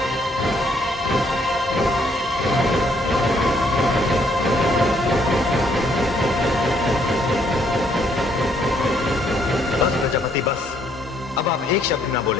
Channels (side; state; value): both; normal; correlation 0.69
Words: बस प्रजापति बस, अब आप एक शब्द ना